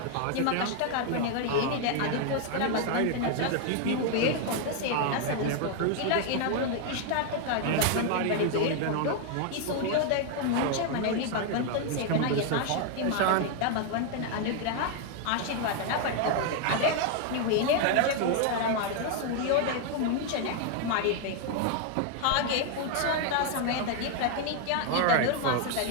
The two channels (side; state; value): both; different; correlation 0.00